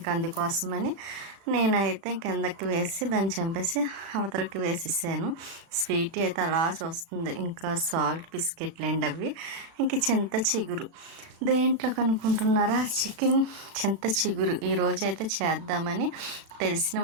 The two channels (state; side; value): late; left; 37 ms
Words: అందుకోసమని నేనైతే కిందకి వేసి దాన్ని చంపేసి అవతలకి వేసేసాను. స్వీటీ అయితే అలా చూస్తుంది. ఇంకా సాల్ట్ బిస్కెట్లండి అవి. ఇంక చింత చిగురు దేంట్లో కనుక్కుంటున్నారా, చికెన్ చింత చిగురు ఈరోజు అయితే చేద్దామని తెలిసిన